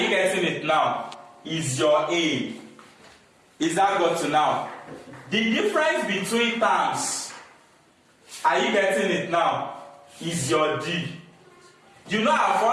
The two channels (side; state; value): both; identical; correlation 1.00